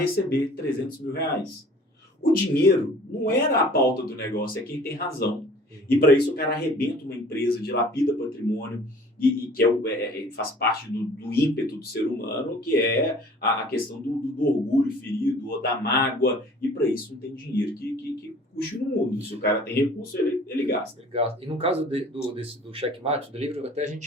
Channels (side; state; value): both; normal; correlation 0.49